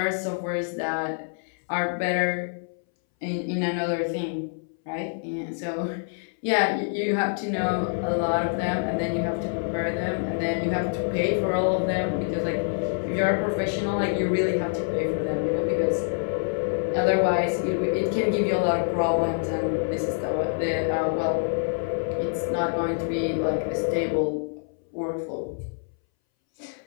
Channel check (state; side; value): silent; right; 61 dB below the other